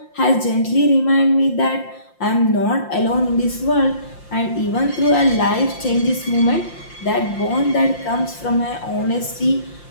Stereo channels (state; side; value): late; right; 5.7 ms